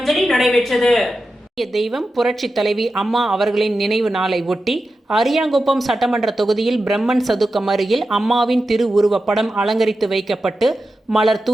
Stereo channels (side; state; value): both; normal; correlation 0.91